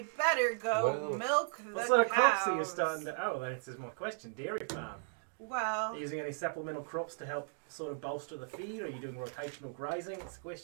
better go Well, milk the What sort of crops are you cows. starting to... Oh, that answers my question. Dairy farm. Well, Are you using any supplemental crops to help sort of bolster the feed? Or are you doing rotational grazing? What's the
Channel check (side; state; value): left; silent; digital silence